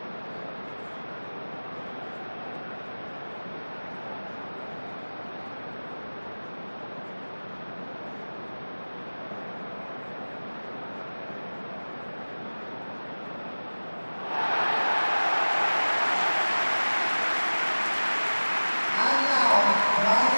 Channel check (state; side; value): inverted; both; correlation -1.00